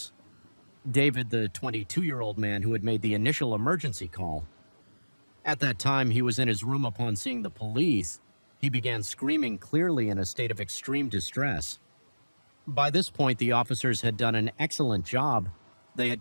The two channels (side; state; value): both; inverted; correlation -1.00